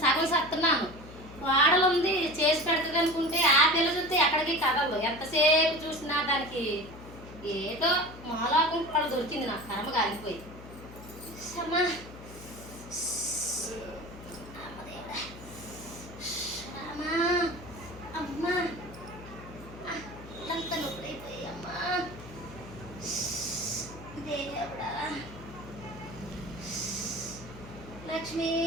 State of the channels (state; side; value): noise; left; hum, 16 dB below the sound